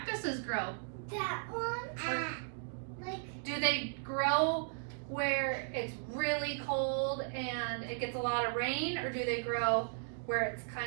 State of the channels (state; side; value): silent; left; digital silence